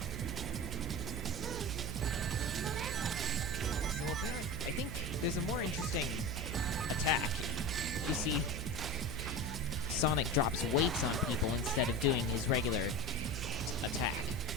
So apparently, I think there's a more interesting attack. You see, Sonic drops weights on people instead of doing his regular attack.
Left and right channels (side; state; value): right; noise; hum, 5 dB below the sound